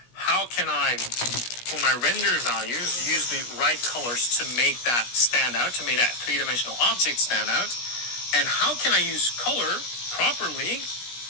How can I, for my render values, use the right colors to make that stand out, to make that three-dimensional object stand out? And how can I use color properly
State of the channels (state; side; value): late; right; 17 ms